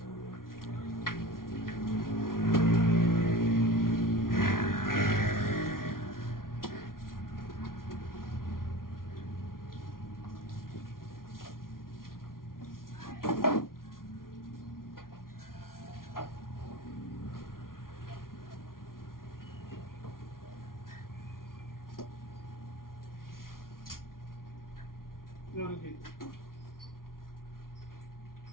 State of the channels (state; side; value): late; right; 0.92 ms